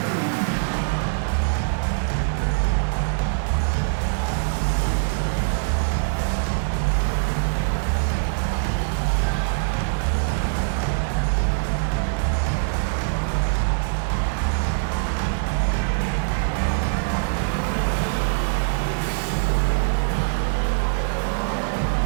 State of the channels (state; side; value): silent; left; 57 dB below the other